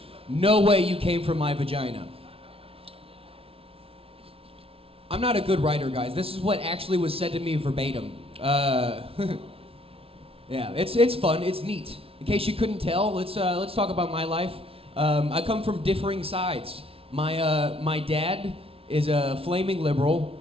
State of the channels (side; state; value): left; late; 0.27 ms